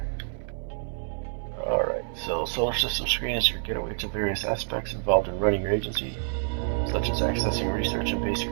Alright, so solar system screen is your getaway to various aspects involved in running your agency, such as accessing research and base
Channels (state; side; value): silent; left; 59 dB below the other